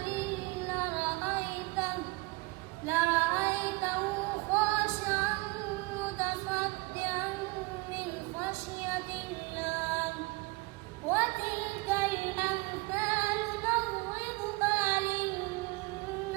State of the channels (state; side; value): quieter; left; 25.3 dB